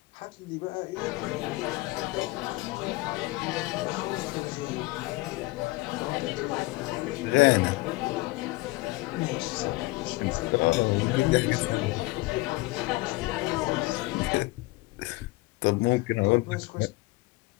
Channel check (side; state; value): right; quieter; 21.9 dB